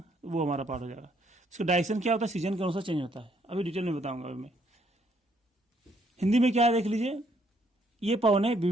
वो हमारा पार्ट हो जाएगा। इसका डायरेक्शन क्या होता है, सीजन के अनुसार चेंज होता है। अभी डिटेल में बताऊंगा। अभी मैं हिंदी में क्या है देख लीजिए। ये पवने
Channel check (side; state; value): both; normal; correlation 0.69